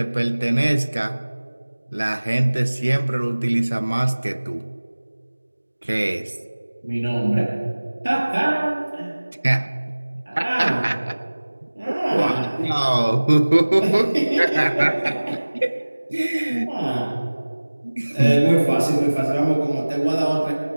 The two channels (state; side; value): inverted; both; correlation -1.00